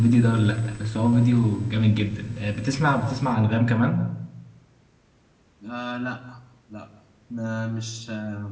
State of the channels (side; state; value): both; identical; correlation 1.00